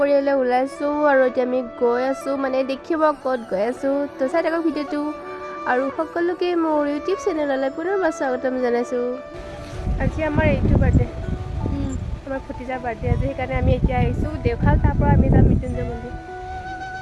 ওলাইছোঁ আৰু এতিয়া আমি গৈ আছোঁ, মানে দেখিব ক'ত গৈ আছোঁ। তো চাই থাকক ভিডিঅ'টো আৰু সকলোকে মোৰ ইউটিউব চেনেললৈ পুনৰবাৰ স্বাগতম জনাইছোঁ। আজি আমাৰ এইটো বাৰ্থডে, আমাৰ ভতিজাৰ বাৰ্থডে আজি, সেইকাৰণে আমি এতিয়া আহিছোঁ দেওশাল। তাৰ পৰা আমি যাম মৃত্যুঞ্জয় মন্দিৰ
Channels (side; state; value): both; identical; correlation 1.00